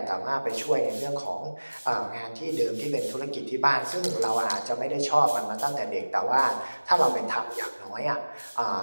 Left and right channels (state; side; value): inverted; both; correlation -1.00